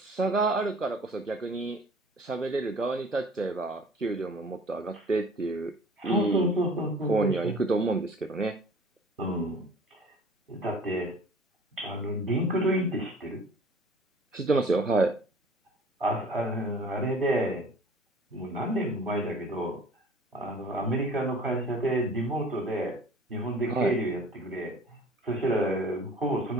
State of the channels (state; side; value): normal; both; correlation 0.48